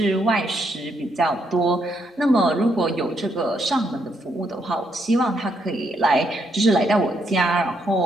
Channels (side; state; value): both; normal; correlation 0.76